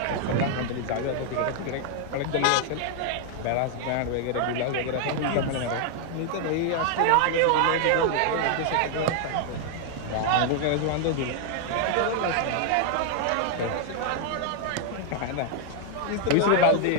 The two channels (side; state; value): both; different; correlation 0.00